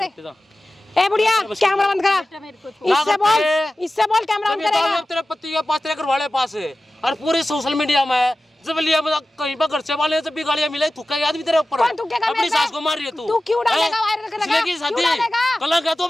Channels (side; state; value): both; normal; correlation 0.95